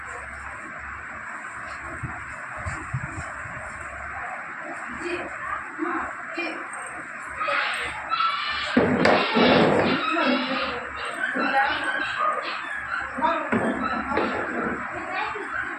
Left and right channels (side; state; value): both; identical; correlation 1.00